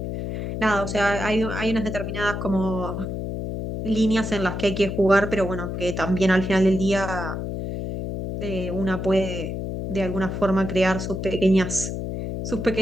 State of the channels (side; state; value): left; noise; hum, 4 dB below the sound